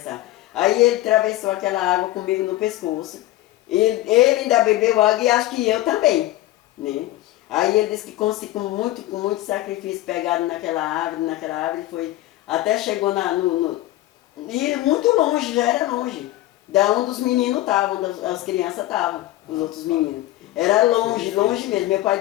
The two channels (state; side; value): quieter; right; 16.1 dB